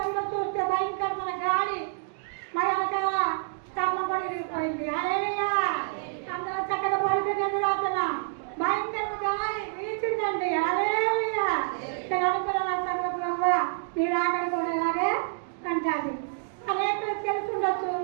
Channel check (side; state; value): left; silent; digital silence